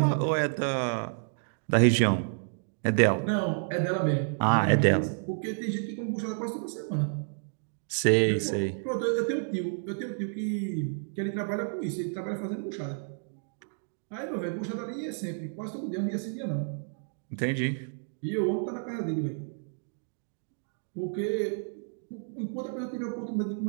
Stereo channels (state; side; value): silent; left; digital silence